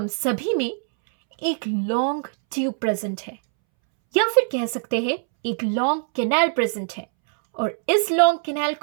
सभी में एक लॉन्ग ट्यूब प्रेजेंट है, या फिर कह सकते हैं एक लॉन्ग कैनाल प्रेजेंट है, और इस लॉन्ग कैनाल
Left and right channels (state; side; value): silent; left; 64 dB below the other